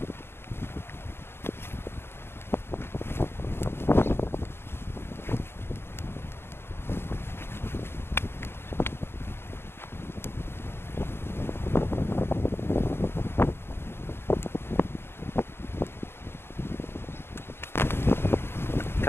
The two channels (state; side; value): late; right; 0.11 ms